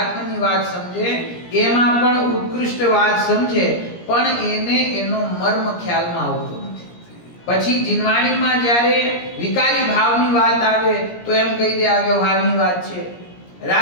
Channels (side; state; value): right; late; 17 ms